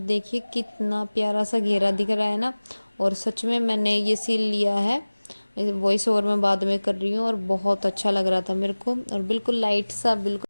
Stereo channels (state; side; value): inverted; both; correlation -1.00